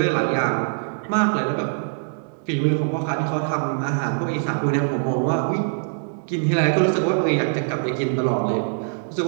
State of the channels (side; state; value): left; silent; digital silence